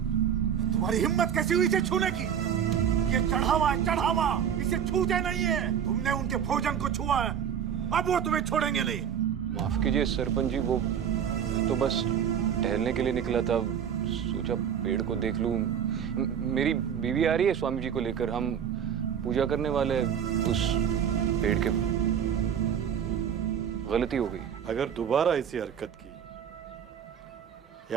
तुम्हारी हिम्मत कैसी हुई इसे छूने की? ये चढ़ावा है, चढ़ावा, इसे छूते नहीं है। तुमने उनके भोजन को छुआ है, अब वो तुम्हें छोड़ेंगे नहीं। माफ कीजिए सरपंच जी, वो तो बस टहलने के लिए निकला था, सोचा पेड़ को देख लूं। मेरी बीवी आ रही है स्वामी जी को लेकर, हम पूजा करने वाले उस पेड़ के। गलती हो गई। अगर दोबारा ऐसी हरकत की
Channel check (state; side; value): quieter; left; 8.5 dB